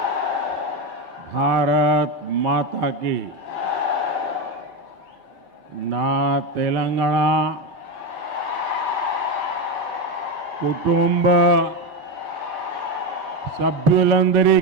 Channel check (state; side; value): normal; both; correlation 0.13